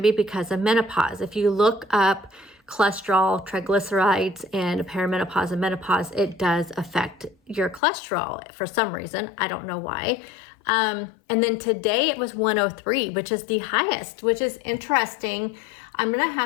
be because of menopause. If you look up cholesterol, triglycerides, and perimenopause and menopause, it does affect your cholesterol for some reason. I don't know why. And then today it was 103, which is the highest, which is interesting. I'm going to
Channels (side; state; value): right; drops out; at 7.8 s